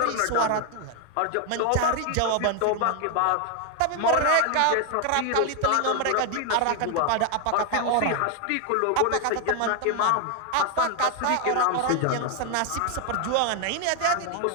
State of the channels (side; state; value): both; different; correlation 0.00